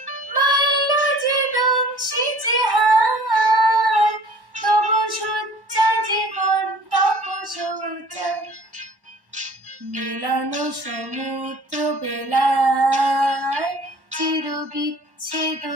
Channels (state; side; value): late; left; 1.1 ms